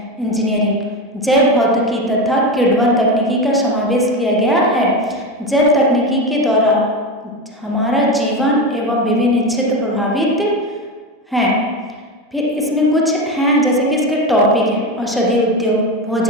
इंजीनियरिंग, जैव भौतिकी तथा किण्वन तकनीकी का समावेश किया गया है। जैव तकनीकी के द्वारा हमारा जीवन एवं विभिन्न क्षेत्र प्रभावित हैं। फिर इसमें कुछ हैं जैसे कि इसके टॉपिक हैं औषधि उद्योग,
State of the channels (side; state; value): both; normal; correlation 0.19